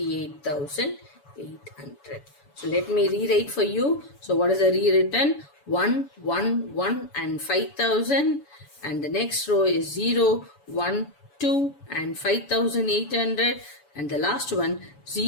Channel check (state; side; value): late; right; 7.0 ms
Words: So let me rewrite for you. So what is the rewritten? 1, 1, 1 and 5,000. And the next row is 0, 1, 2 and 5,800. And the last one